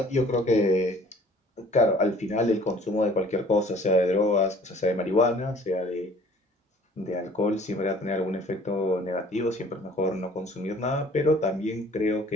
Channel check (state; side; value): normal; both; correlation 0.52